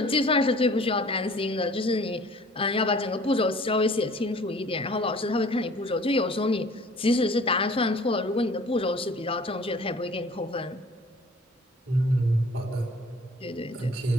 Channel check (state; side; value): normal; both; correlation 0.50